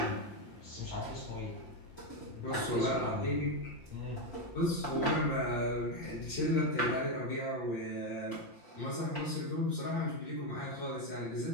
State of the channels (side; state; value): right; late; 5.8 ms